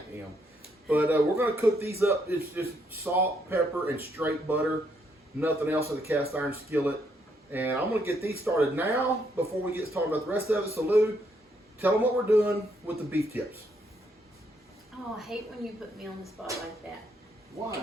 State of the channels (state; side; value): normal; both; correlation 0.74